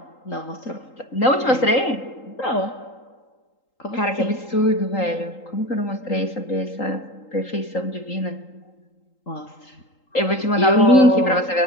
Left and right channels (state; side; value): late; right; 3.8 ms